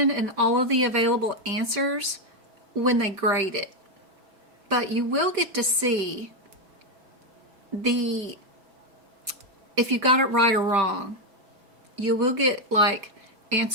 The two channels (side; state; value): left; late; 5.1 ms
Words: and all of the available answers when they grade it. But you will get to see if you got it right or wrong. You will get like